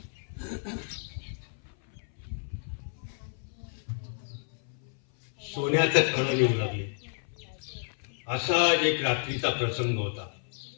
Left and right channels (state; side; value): silent; right; 57 dB below the other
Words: सोन्याचं खडं येऊ लागले. असा एक रात्रीचा प्रसंग होता.